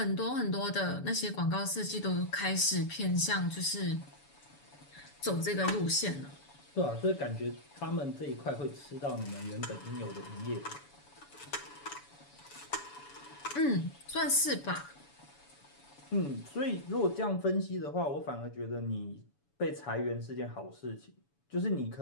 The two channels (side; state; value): right; late; 7.0 ms